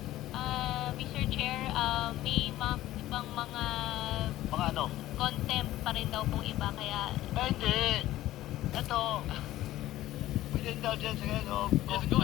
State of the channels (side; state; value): right; quieter; 15.0 dB